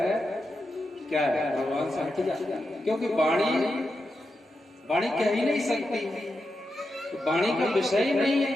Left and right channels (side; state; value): both; normal; correlation 0.88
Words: क्या है, भगवान से हट जाता है। क्योंकि वाणी कह ही नहीं सकती, वाणी का विषय ही नहीं है।